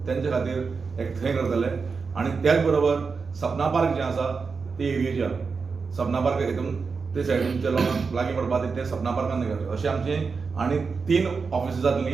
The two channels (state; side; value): quieter; left; 5.0 dB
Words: तेंचे खातीर एक थंय करतले. आनी त्याच बरोबर सपना पार्क जें आसा ते एरियेच्या सपना पार्क हितून ते सायडीनच्या लोकांक लागीं पडपा ते सपना पार्कान करतले. अशें आमचें आनी 3 ऑफिसां